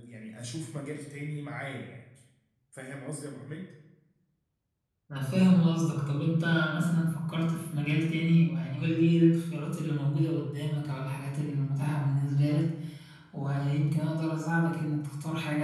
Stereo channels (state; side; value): identical; both; correlation 1.00